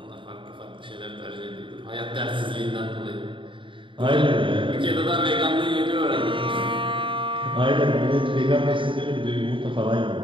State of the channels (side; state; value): left; late; 0.24 ms